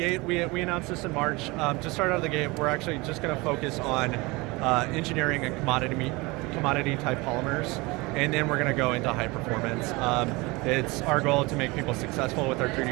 we announced this in March. To start out of the gate, we're actually just going to focus on engineering and commodity type polymers, and then we're going to go into high performance. It's our goal to make people successful with our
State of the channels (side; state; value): left; quieter; 24.1 dB